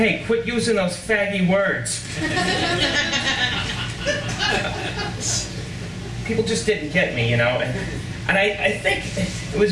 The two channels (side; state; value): both; identical; correlation 1.00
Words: quit using those faggy words. People just didn't get me, you know, and I think it was